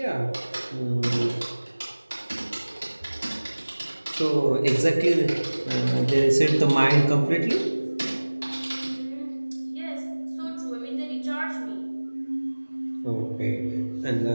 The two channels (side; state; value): both; inverted; correlation -1.00